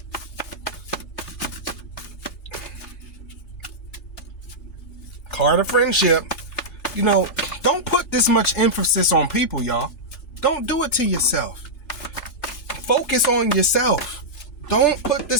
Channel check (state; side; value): late; right; 2.4 ms